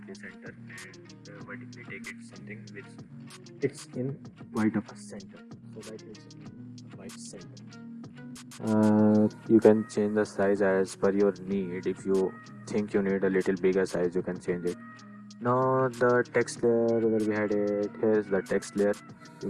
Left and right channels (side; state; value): both; identical; correlation 1.00